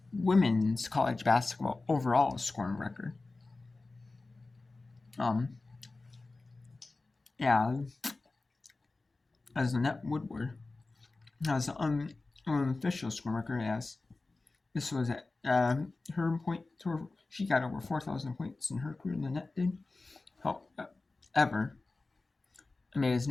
women's college basketball overall scoring record. As Annette Woodward has an unofficial scoring record, as this was at her point. She got over 4,000 points in her career. Annette did. However, it's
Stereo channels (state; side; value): quieter; right; 3.4 dB